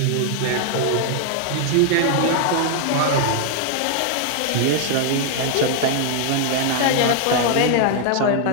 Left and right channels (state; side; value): different; both; correlation 0.00